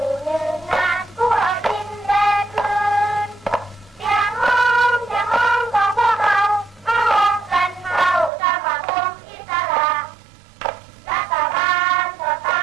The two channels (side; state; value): left; drops out; at 8.3 s